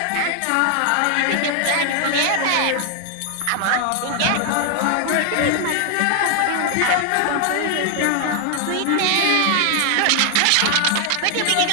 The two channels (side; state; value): both; different; correlation 0.00